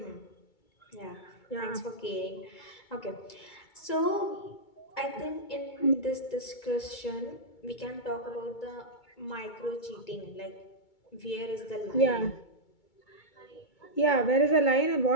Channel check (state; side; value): late; right; 2.2 ms